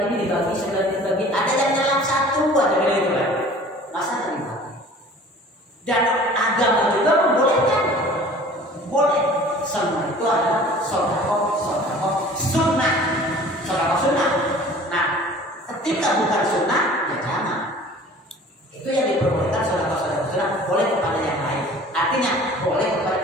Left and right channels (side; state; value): both; normal; correlation 0.46